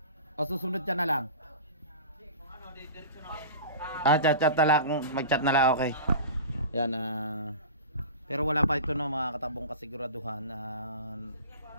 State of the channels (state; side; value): inverted; both; correlation -0.35